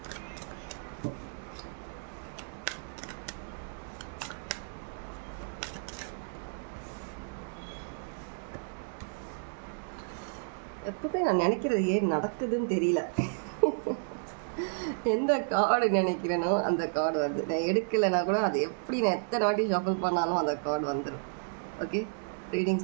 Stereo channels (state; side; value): silent; left; digital silence